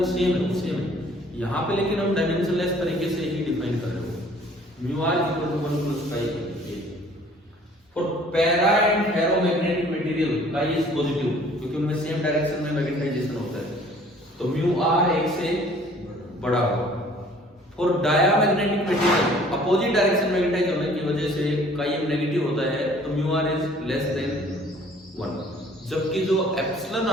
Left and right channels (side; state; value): both; normal; correlation 0.54